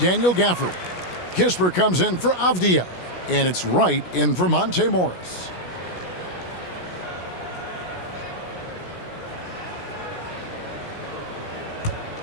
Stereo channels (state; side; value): late; right; 16 ms